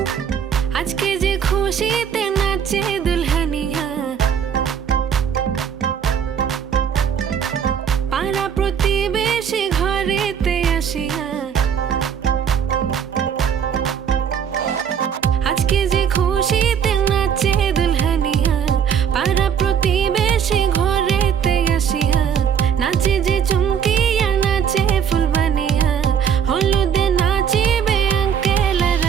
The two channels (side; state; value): left; quieter; 7.8 dB